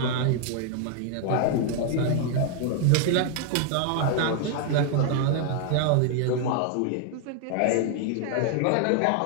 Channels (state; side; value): different; both; correlation 0.00